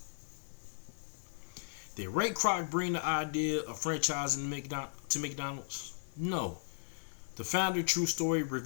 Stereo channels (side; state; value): right; silent; digital silence